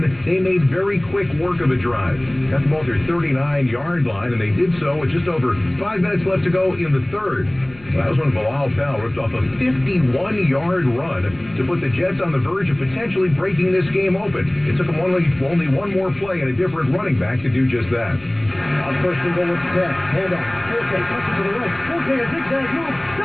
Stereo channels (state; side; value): noise; left; rumble, 23 dB below the sound